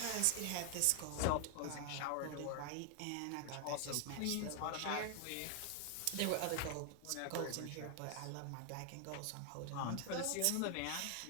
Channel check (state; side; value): different; both; correlation 0.00